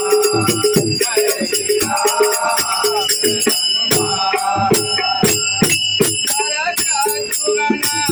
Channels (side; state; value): both; identical; correlation 1.00